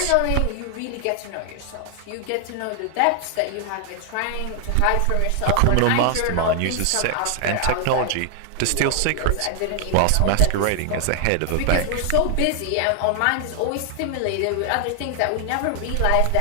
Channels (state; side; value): different; both; correlation 0.00